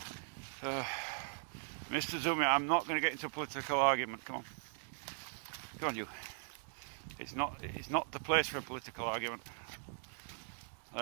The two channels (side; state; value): left; silent; digital silence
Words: Mr. Zumi, I'm not going to get into a political argument. Come on, you. It's not the place for a political argument.